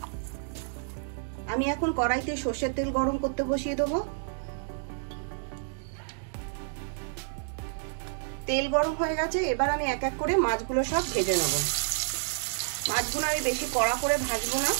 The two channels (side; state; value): left; silent; digital silence